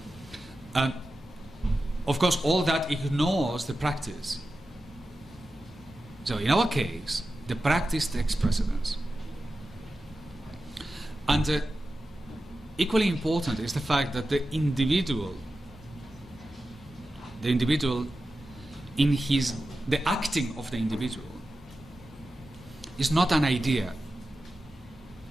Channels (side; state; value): both; normal; correlation 0.92